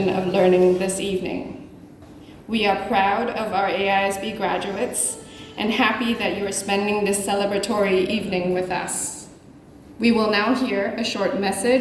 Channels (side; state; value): both; identical; correlation 1.00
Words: of learning this evening. We are proud of our AISB graduates and happy that you are spending this celebratory evening with us. We will now hear a short